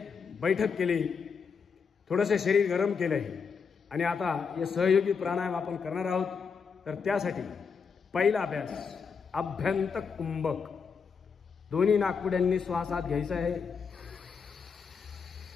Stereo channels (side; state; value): right; quieter; 5.8 dB